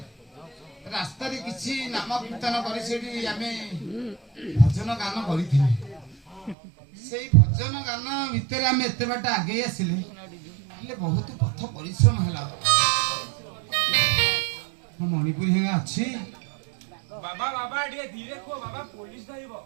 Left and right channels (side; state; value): left; drops out; at 6.6 s